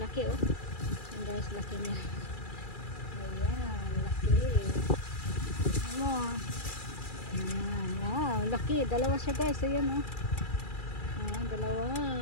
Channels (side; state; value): right; late; 2.4 ms